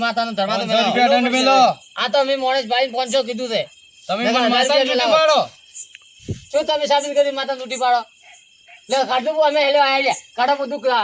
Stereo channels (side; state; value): both; identical; correlation 1.00